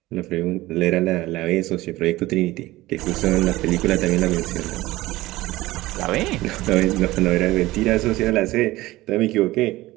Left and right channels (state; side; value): quieter; left; 18.2 dB